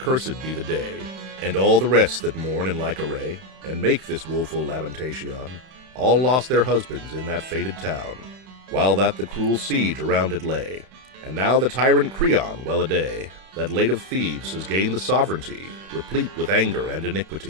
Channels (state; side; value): late; left; 31 ms